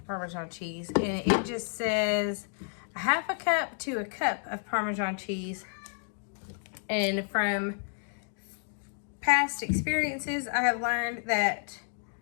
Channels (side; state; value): right; silent; 57 dB below the other